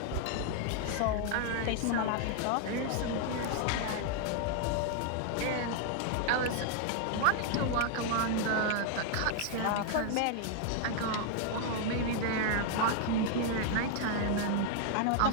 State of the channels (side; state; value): both; different; correlation 0.00